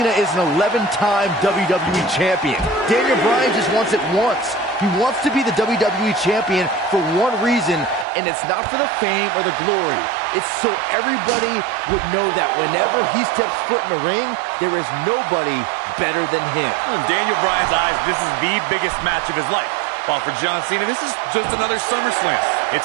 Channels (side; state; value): left; drops out; at 8.1 s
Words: is an 11-time WWE Champion. Daniel Bryan just wants it once. He wants to be the WWE Champion for one reason, and it's not for the fame or the glory. It's so everybody would know that whenever he steps foot in the ring, there is nobody better than him. In Daniel Bryan's eyes, this is the biggest match of his life. While for John Cena, this is just another SummerSlam. It's